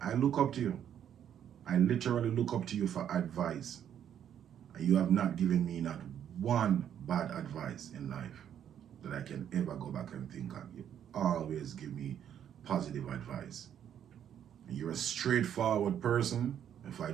I look up to you. I literally look up to you for advice. And you have not given me not one bad advice in life that I can ever go back and think of. You always give me positive advice. And you're a straightforward person. If I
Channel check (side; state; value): left; quieter; 9.5 dB